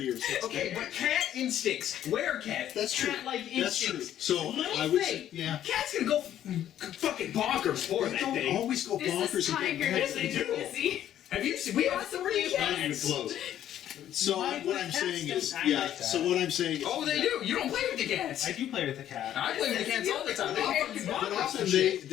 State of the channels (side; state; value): right; quieter; 11.3 dB